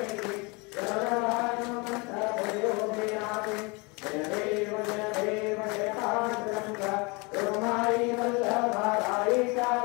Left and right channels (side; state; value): right; quieter; 28.4 dB